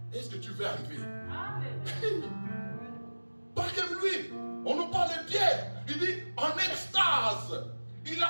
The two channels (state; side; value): inverted; both; correlation -1.00